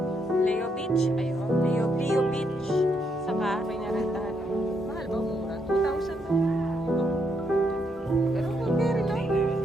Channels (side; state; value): both; normal; correlation 0.77